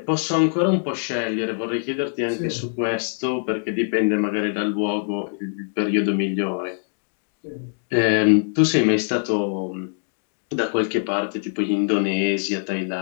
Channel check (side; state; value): right; silent; digital silence